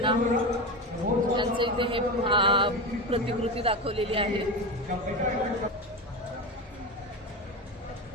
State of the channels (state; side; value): normal; both; correlation 0.20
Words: यांचं इथे हे प्रतिकृती दाखवलेली आहे.